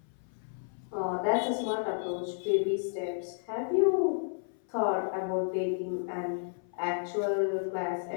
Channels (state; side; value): silent; right; 57 dB below the other